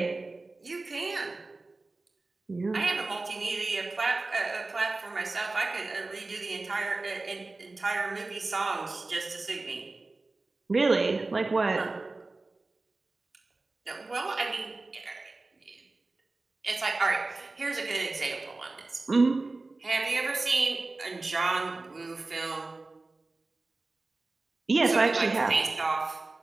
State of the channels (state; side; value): quieter; left; 3.3 dB